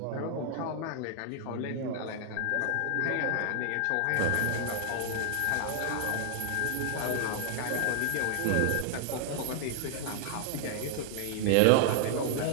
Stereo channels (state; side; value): different; both; correlation 0.00